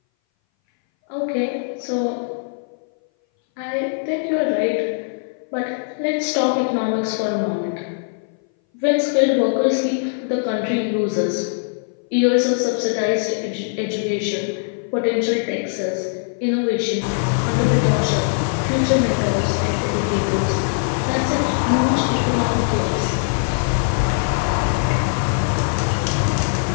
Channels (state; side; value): silent; right; 60 dB below the other